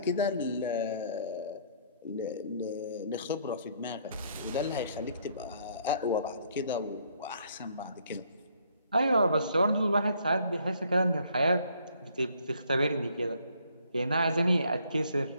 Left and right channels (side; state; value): both; inverted; correlation -0.65